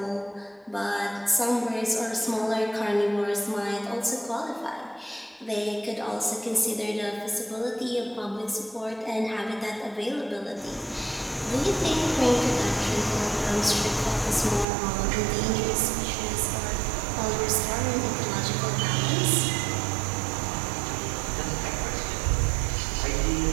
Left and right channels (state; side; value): drops out; left; at 14.7 s